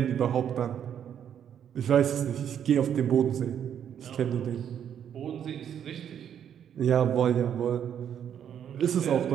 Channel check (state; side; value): quieter; left; 9.1 dB